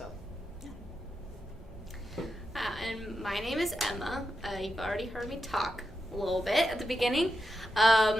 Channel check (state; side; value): normal; both; correlation 0.87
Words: And my name is Emma. You've already heard me talk a little bit at the beginning.